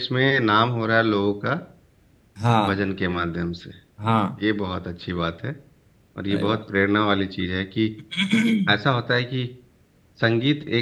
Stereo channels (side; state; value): both; identical; correlation 1.00